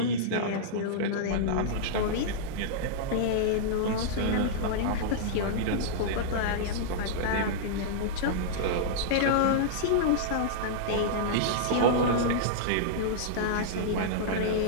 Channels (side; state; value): both; different; correlation -0.02